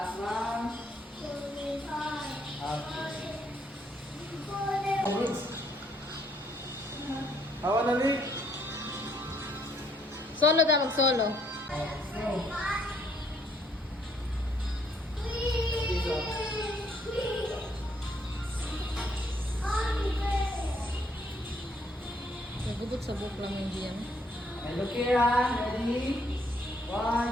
lang. Okay. Awan na ni. Solo daw, solo. Nagubot sa book lang yung diyan. Okay, look here, ready?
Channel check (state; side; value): normal; both; correlation 0.68